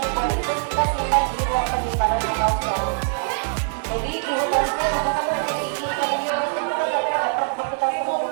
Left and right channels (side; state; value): left; silent; 63 dB below the other